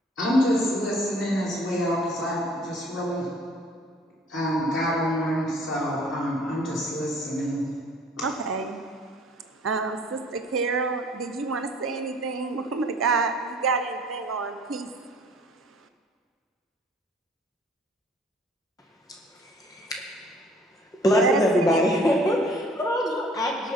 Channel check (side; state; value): both; normal; correlation 0.55